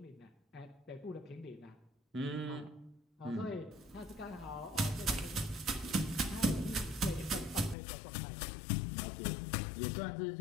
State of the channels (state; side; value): drops out; right; at 7.8 s